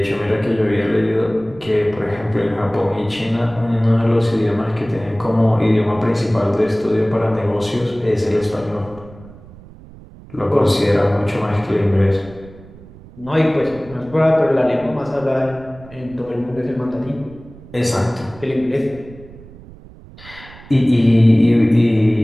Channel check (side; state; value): right; noise; rumble, 20 dB below the sound